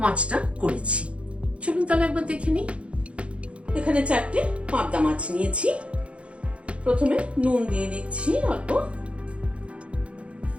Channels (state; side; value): late; left; 0.061 ms